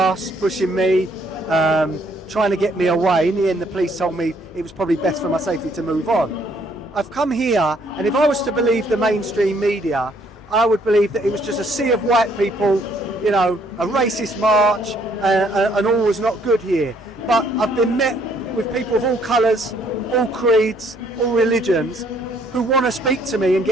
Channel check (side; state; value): both; normal; correlation 0.65